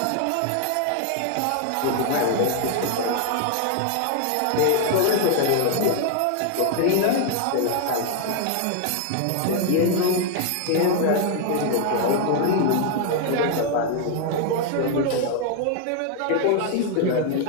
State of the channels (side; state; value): both; different; correlation 0.00